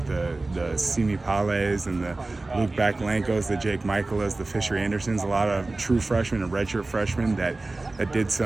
the Simi Pales and the Luke Bakalenkos, the Jake Michaelas, the Fisher Andersons, a lot of true freshmen and redshirt freshmen that did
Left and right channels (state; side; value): quieter; left; 3.2 dB